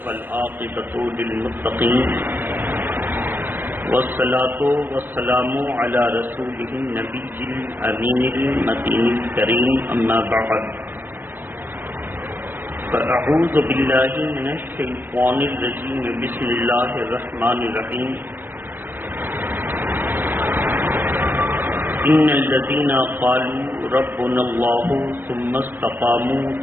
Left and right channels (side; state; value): left; late; 0.094 ms